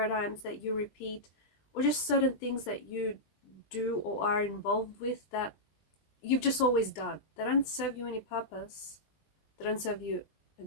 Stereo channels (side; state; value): right; late; 20 ms